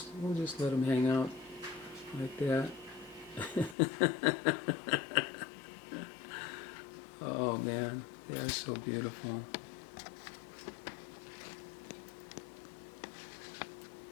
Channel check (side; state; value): right; drops out; at 3.8 s